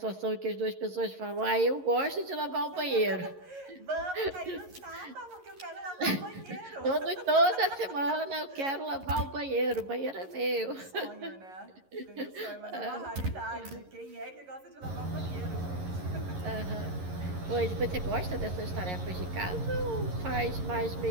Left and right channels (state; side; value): late; left; 11 ms